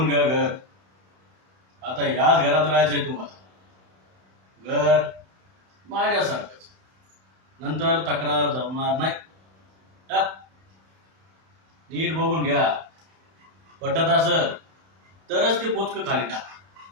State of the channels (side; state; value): left; late; 31 ms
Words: घ्या घर. आता याच घरात राहायचंय तुम्हाला. घर माझ्यासारखंच. नंतर तक्रार जमणार नाही. हा? नीट बघून घ्या. पटत असेल तरच ते पोचक खाली टाक,